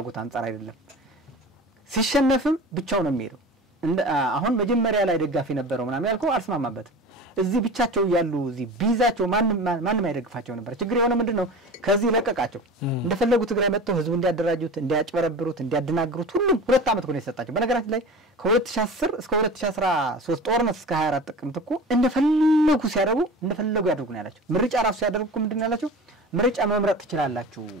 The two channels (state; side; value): normal; both; correlation 0.35